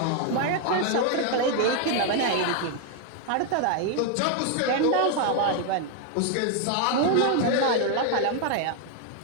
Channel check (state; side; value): different; both; correlation 0.00